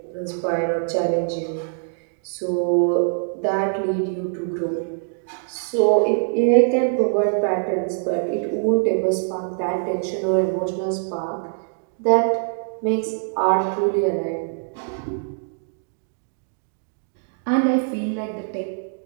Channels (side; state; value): left; silent; digital silence